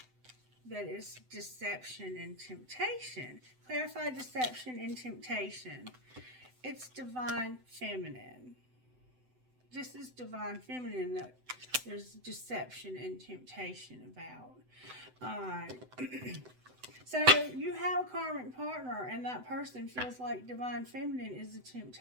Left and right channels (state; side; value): late; left; 7.9 ms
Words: That is deception and temptation. Clarify deception and temptation. It's Divine Feminine. This is Divine Feminine that there's deception and temptation about. Alright. So you have a karmic partner, and that person feels like Divine Feminine is a